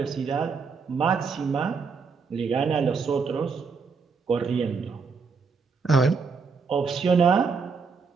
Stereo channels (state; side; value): quieter; left; 5.2 dB